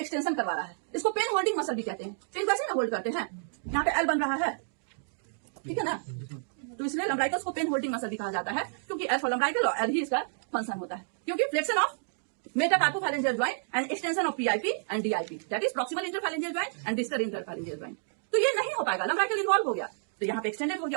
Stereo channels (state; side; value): silent; left; digital silence